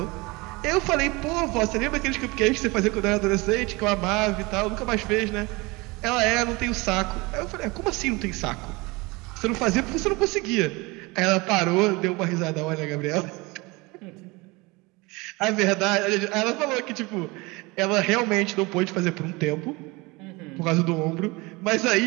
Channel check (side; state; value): left; quieter; 24.6 dB